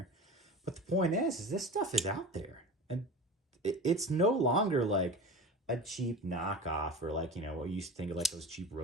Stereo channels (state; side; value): normal; both; correlation 0.33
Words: But the point is this stuff is out there. And it's no longer like a cheap knockoff or like, what you used to think of like those cheap